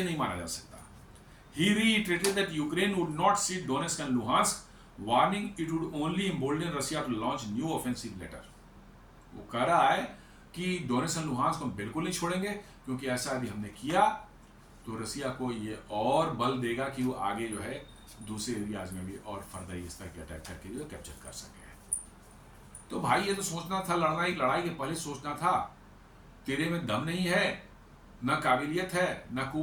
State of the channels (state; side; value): identical; both; correlation 1.00